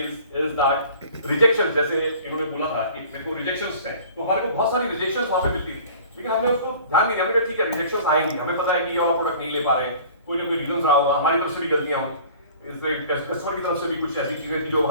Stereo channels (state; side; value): inverted; both; correlation -0.46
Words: is that rejection, जैसे इन्होंने बोला था कि मेरे को rejections हैं, तो हमारे को बहुत सारी rejections वहाँ पे मिलती थी, लेकिन हमने उसको ध्यान नहीं दिया। हमने कहा ठीक है rejections आएंगी, हमें पता है कि ये वाला प्रोडक्ट नहीं ले पा रहे हैं, कोई ना कोई रीजन रहा होगा, हमारी तरफ से भी गलतियां हों, कस्टमर की तरफ से भी कुछ ऐसी चीजें थी जो